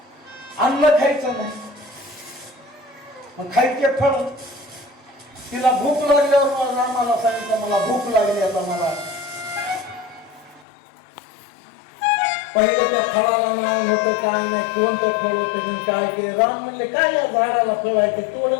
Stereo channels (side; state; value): right; drops out; at 10.7 s